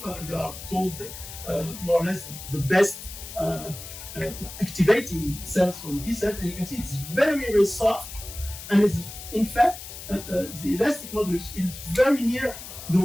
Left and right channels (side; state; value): left; noise; hiss, 12 dB below the sound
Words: they are called more or less the best activating cells from T cells, and you can see it's very, very soft, and it's in fact the elastic modulus is very near the